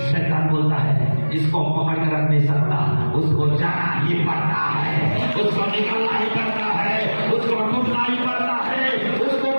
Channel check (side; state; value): both; inverted; correlation -1.00